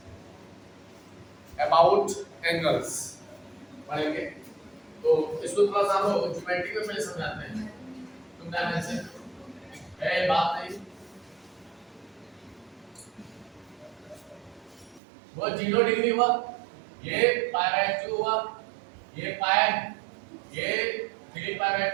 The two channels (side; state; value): left; drops out; at 15.0 s